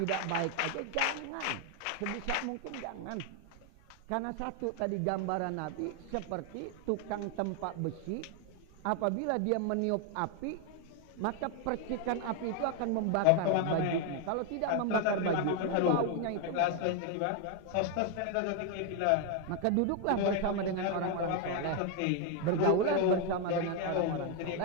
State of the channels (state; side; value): different; both; correlation 0.01